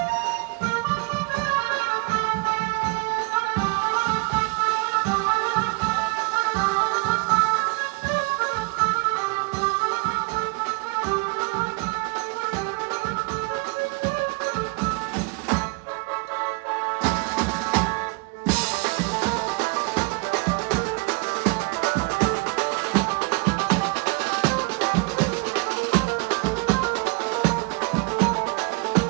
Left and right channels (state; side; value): quieter; left; 30.9 dB